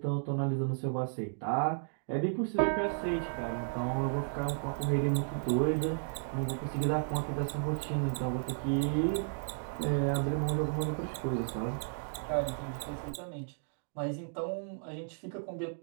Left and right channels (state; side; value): silent; left; digital silence